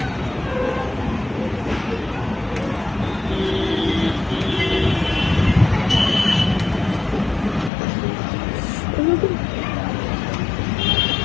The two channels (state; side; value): drops out; right; at 7.7 s